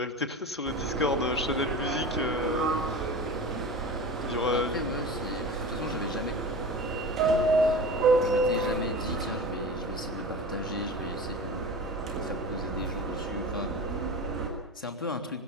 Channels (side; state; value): both; normal; correlation 0.31